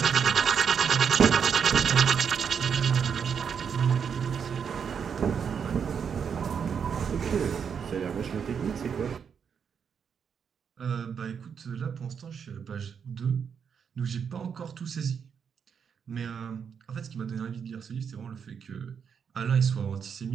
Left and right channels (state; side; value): quieter; left; 7.0 dB